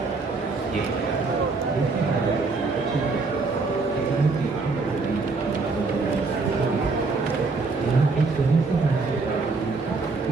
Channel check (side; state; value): left; quieter; 4.0 dB